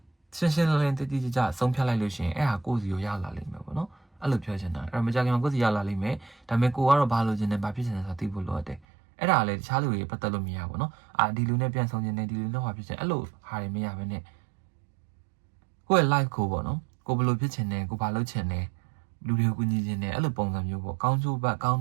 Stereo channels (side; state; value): left; drops out; at 8.8 s